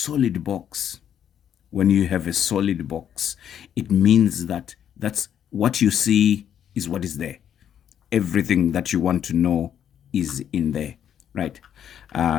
box, when you have a solid box, it means that that's what you see is what is there. Everything that you want to know is in there, right?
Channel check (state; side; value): quieter; right; 9.4 dB